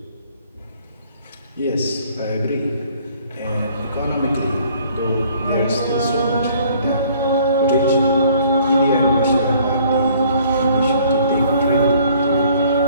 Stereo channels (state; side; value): inverted; both; correlation -0.58